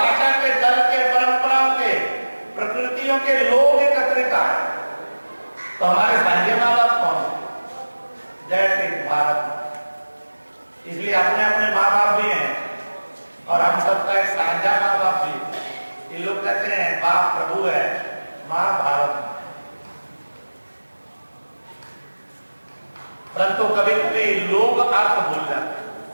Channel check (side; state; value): both; inverted; correlation -1.00